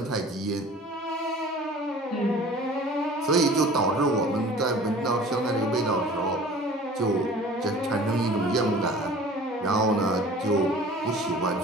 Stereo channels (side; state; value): both; normal; correlation 0.45